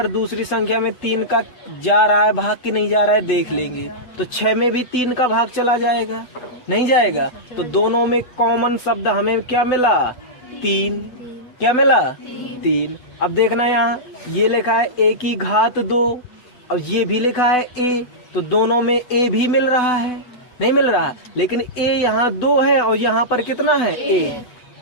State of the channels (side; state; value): right; late; 8.0 ms